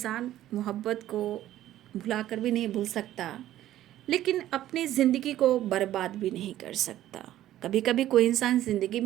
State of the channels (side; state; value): left; quieter; 13.3 dB